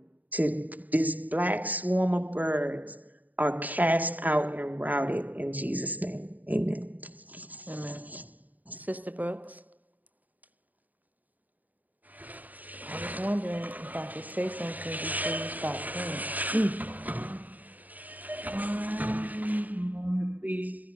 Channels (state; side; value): late; left; 0.080 ms